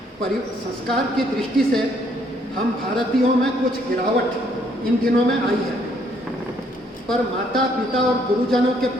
संस्कार की दृष्टि से हम भारतीयों में कुछ गिरावट इन दिनों में आई है, पर माता पिता और गुरुजनों के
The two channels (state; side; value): normal; both; correlation 0.68